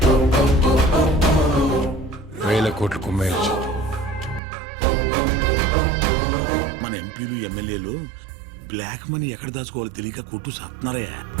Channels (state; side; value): drops out; left; at 4.4 s